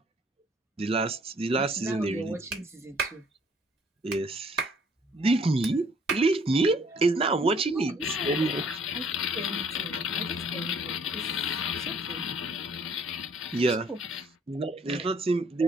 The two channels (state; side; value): normal; both; correlation 0.60